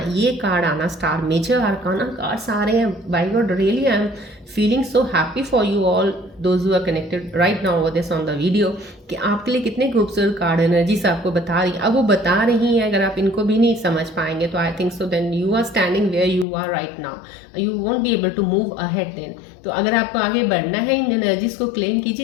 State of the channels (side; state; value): right; drops out; at 16.4 s